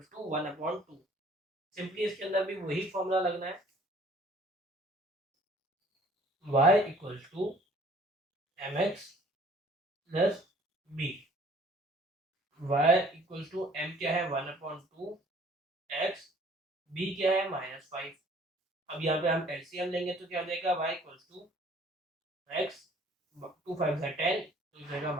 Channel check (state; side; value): normal; both; correlation 0.55